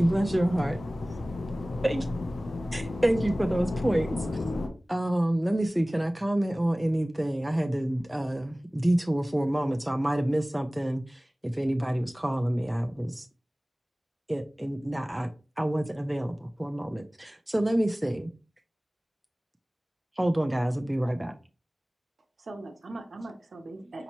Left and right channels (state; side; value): normal; both; correlation 0.98